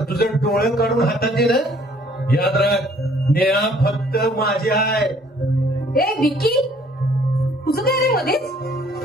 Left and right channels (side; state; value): both; normal; correlation 0.59